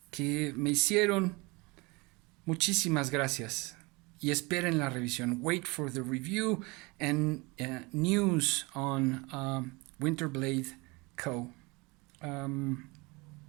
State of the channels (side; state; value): left; quieter; 25.8 dB